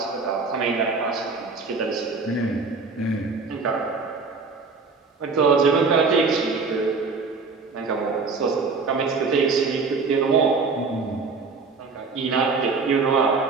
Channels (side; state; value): left; quieter; 4.4 dB